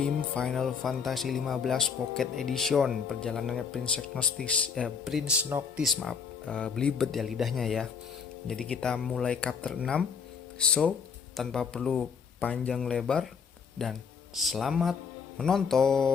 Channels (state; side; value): quieter; right; 6.2 dB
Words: Final Fantasy 15 Pocket Edition. Perjalanannya Prince Noctis, maaf, belibet ya lidahnya ya. Jadi kita mulai chapter 6. So, tanpa perlu panjang lebar dan selamat